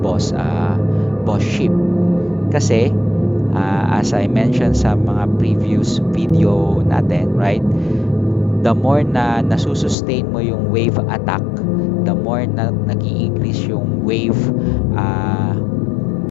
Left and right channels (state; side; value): drops out; right; at 10.0 s